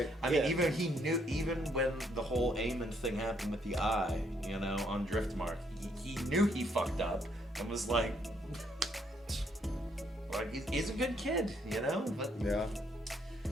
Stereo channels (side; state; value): both; normal; correlation 0.71